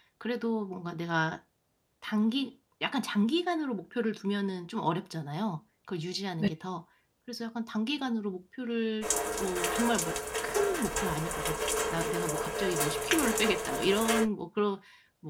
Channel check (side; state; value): both; identical; correlation 1.00